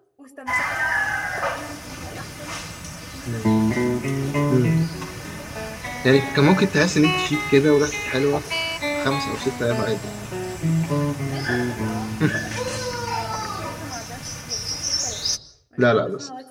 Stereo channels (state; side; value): identical; both; correlation 1.00